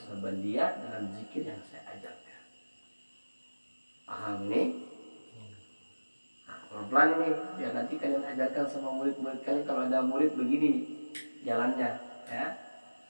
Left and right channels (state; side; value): inverted; both; correlation -1.00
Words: dengan zikir yang saya ajarkan. Paham nih? Nah, pelan-pelan nih biar nanti kalian ajarkan sama murid-murid kalian. Kalau ada murid begini nih jalannya ya.